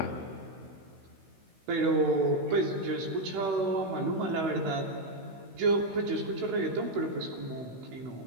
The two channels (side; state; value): left; late; 16 ms